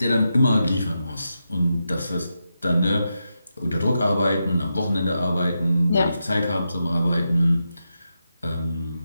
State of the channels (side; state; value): both; inverted; correlation -0.87